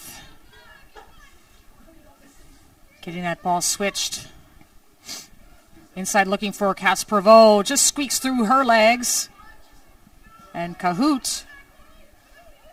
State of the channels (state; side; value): identical; both; correlation 1.00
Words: getting that ball switched. Inside looking for Cass Prevost, just squeaks through her legs. And Cahoot